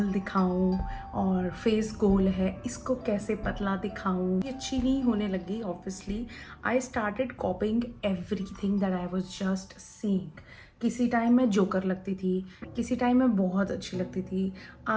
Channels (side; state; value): both; identical; correlation 1.00